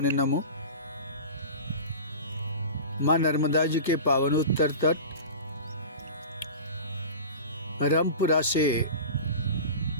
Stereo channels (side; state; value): both; inverted; correlation -0.34